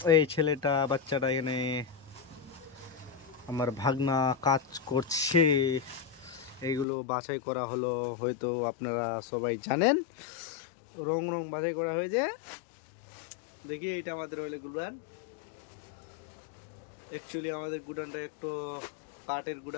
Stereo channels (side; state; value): right; drops out; at 6.9 s